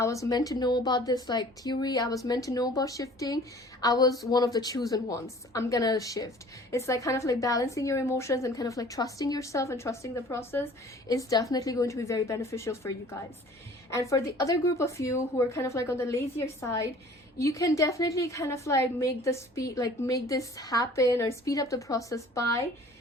was meant to know about this like theory. I was meant to know about shifting. I was one of the chosen ones. I'm gonna shift. It's like kind of like balancing your emotions and kind of like trusting yourself and trusting the process is definitely going to be very beneficial for you guys. And for the other group of you who are kind of like on the lazier side, you can definitely kind of like make this happen or speed up the process by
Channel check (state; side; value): normal; both; correlation 0.49